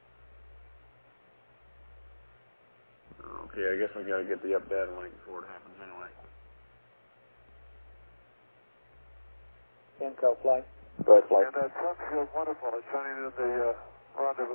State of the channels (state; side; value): inverted; both; correlation -1.00